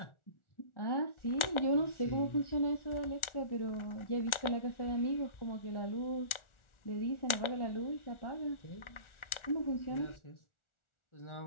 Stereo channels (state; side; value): late; right; 1.4 ms